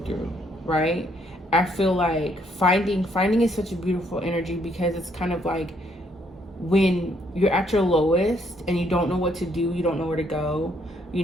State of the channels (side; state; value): both; normal; correlation 0.70